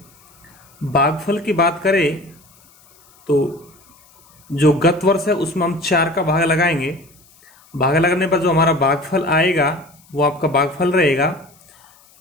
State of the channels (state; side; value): noise; left; hiss, 29 dB below the sound